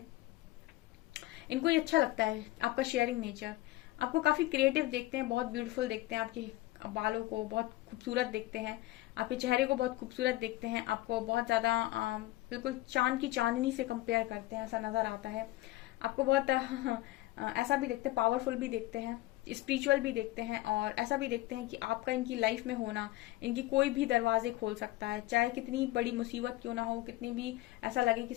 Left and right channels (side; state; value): right; quieter; 17.8 dB